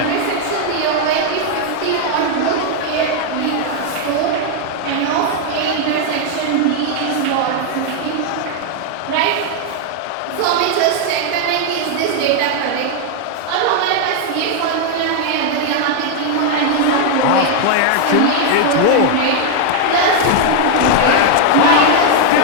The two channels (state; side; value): different; both; correlation 0.00